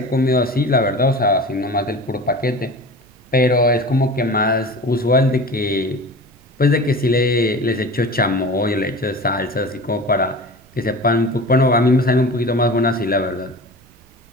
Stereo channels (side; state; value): right; noise; rumble, 29 dB below the sound